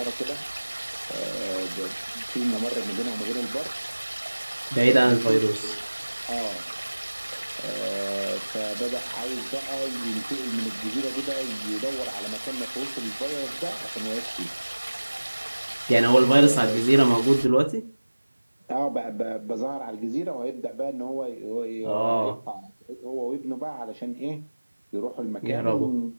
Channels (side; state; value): both; inverted; correlation -1.00